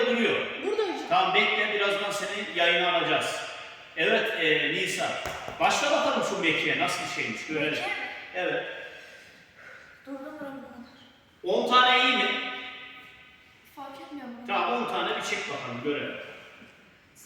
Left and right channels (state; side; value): identical; both; correlation 1.00